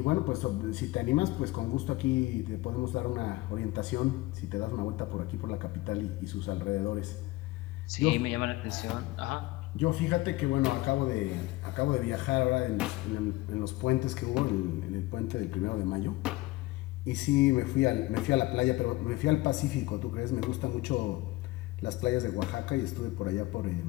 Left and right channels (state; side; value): quieter; right; 19.4 dB